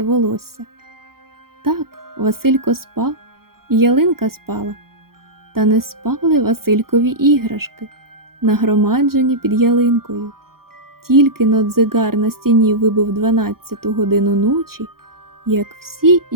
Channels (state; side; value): late; left; 0.93 ms